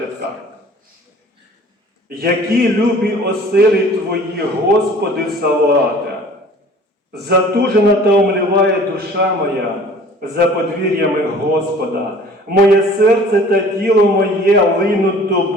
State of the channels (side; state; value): both; normal; correlation 0.49